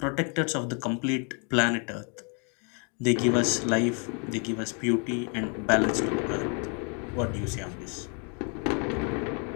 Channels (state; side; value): quieter; right; 37.0 dB